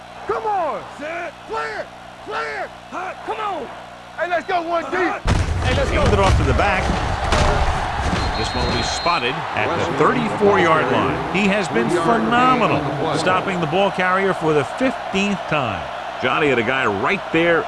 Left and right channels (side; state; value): both; identical; correlation 1.00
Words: Come on. Set. Clear. Come on. Hey, let's go one deep. Hey, let's go. Hand it off to the back. This one will be spotted at the 34-yard line. He has been phenomenal, stopping the ball carrier for the 15th time. Johnny had a guy right there